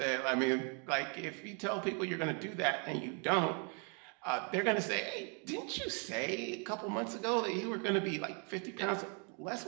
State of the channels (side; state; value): left; quieter; 38.2 dB